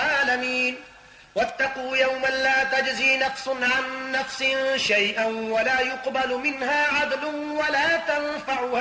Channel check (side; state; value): both; identical; correlation 1.00